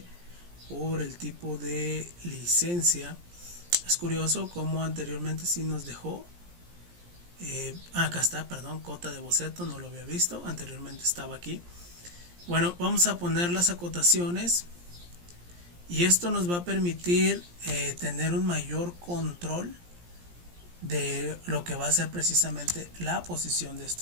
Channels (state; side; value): late; left; 17 ms